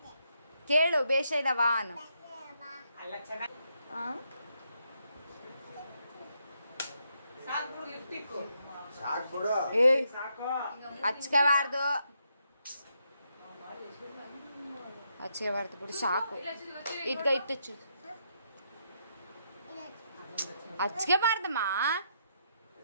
ಕೇಳು, ಬೇಷ ಇದವ ಅನ್ನು. ಹಚ್ಕೋಬಾರ್ದು, ಹಚ್ಕೋಬಾರ್ದು ಬಿಡು, ಸಾಕು. ಇಟ್ಕ ಇಟ್ಟು ಹಚ್ಕೋಬಾರ್ದಮ್ಮ.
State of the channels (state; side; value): inverted; both; correlation -0.78